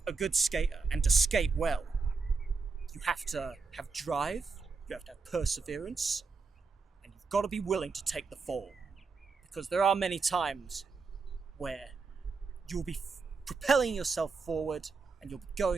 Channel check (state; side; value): quieter; left; 4.7 dB